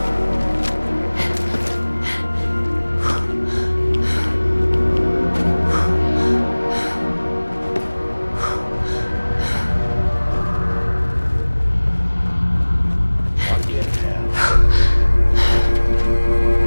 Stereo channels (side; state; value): both; inverted; correlation -1.00